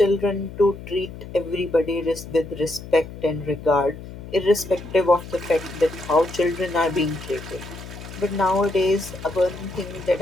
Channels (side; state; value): left; noise; hum, 13 dB below the sound